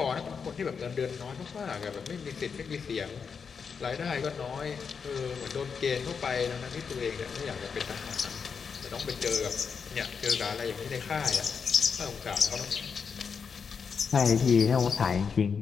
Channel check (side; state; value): right; quieter; 6.0 dB